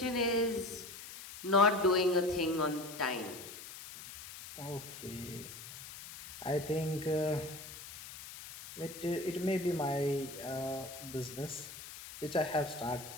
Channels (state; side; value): noise; left; hiss, 13 dB below the sound